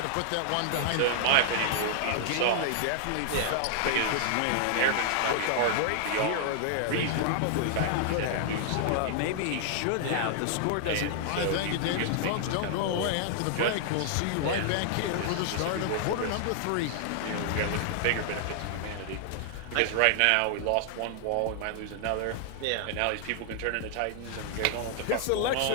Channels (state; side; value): different; both; correlation 0.00